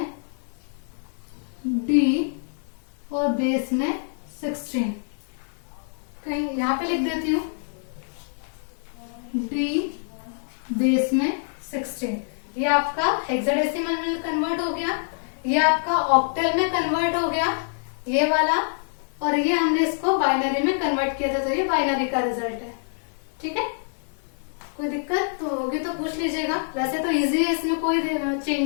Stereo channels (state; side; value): silent; right; digital silence